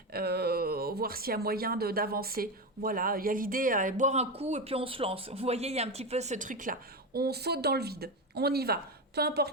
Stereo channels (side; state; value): both; normal; correlation 0.16